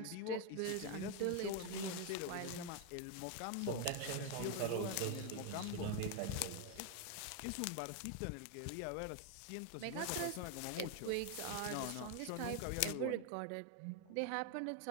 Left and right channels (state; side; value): different; both; correlation 0.01